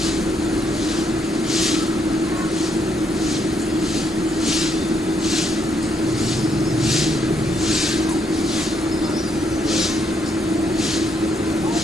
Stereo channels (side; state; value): both; normal; correlation 0.75